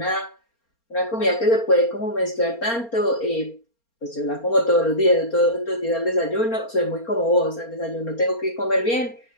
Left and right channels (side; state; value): right; late; 4.3 ms